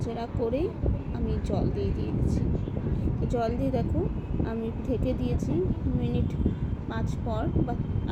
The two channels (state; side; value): identical; both; correlation 1.00